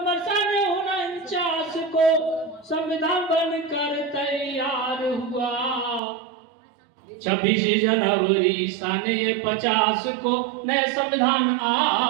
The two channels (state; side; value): drops out; left; at 6.0 s